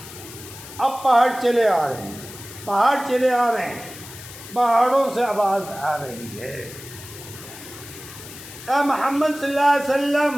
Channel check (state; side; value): noise; left; hiss, 15 dB below the sound